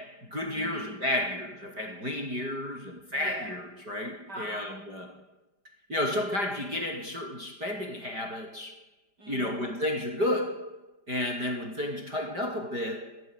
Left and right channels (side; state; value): left; late; 5.0 ms